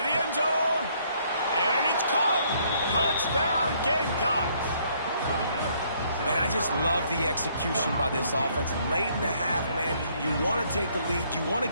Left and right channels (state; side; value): inverted; both; correlation -0.66